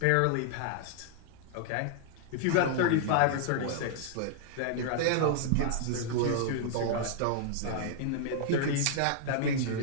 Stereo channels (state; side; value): different; both; correlation -0.01